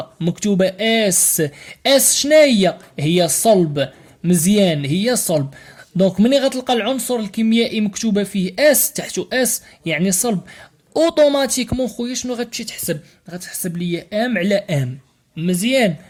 مكتوبة اس. اس شنو هي صلب. مزيان، هي صلب. دونك ملي غتلقى العنصر الكيميائي مكتوبة فيه اس تحتو اس يعني صلب، اوتوماتيكمون خويا شنو غتمشي تحسب؟ غتحسب لي ام على ام. مزيان.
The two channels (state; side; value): identical; both; correlation 1.00